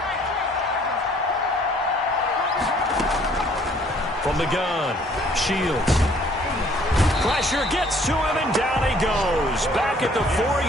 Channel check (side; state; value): both; normal; correlation 0.59